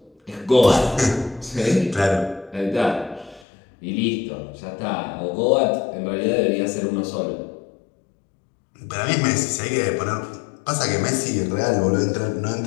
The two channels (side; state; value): right; drops out; at 3.5 s